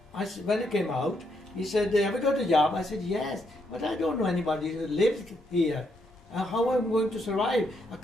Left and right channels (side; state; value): both; normal; correlation 0.76